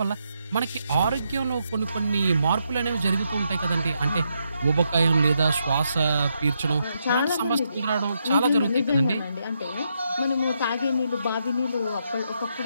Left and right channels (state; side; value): inverted; both; correlation -0.80